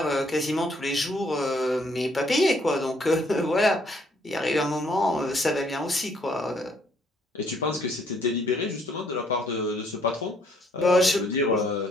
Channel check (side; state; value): both; normal; correlation 0.66